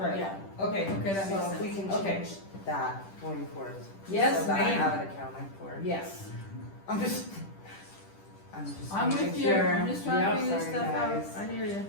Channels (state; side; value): late; right; 10 ms